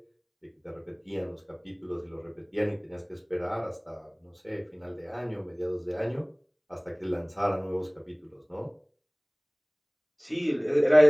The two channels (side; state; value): both; identical; correlation 1.00